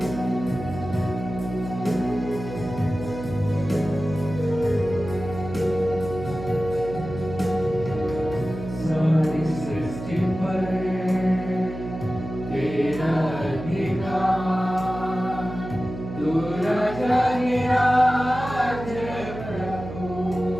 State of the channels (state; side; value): noise; right; hum, 10 dB below the sound